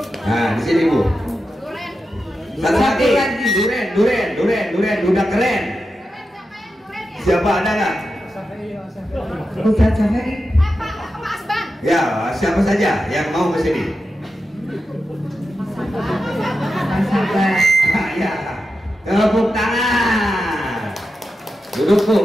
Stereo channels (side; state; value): both; normal; correlation 0.89